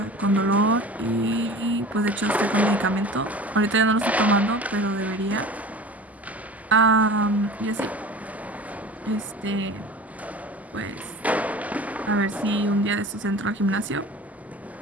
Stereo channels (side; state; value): both; normal; correlation 0.38